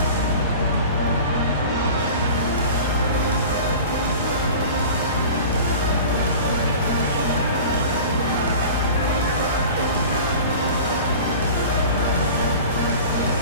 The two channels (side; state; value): both; inverted; correlation -0.38